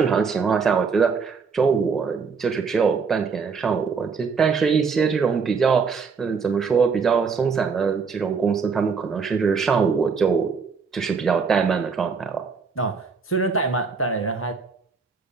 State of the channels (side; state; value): left; quieter; 5.4 dB